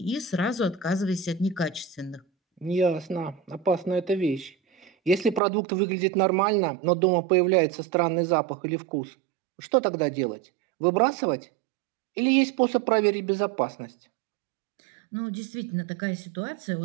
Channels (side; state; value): left; drops out; at 5.4 s